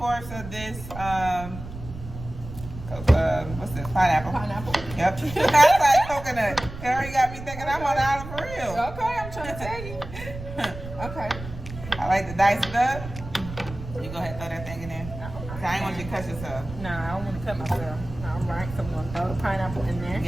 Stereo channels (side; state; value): right; noise; rumble, 11 dB below the sound